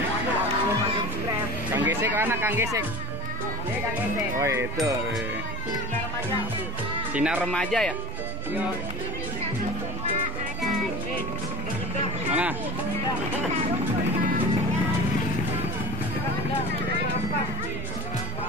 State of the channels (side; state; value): right; noise; rumble, 14 dB below the sound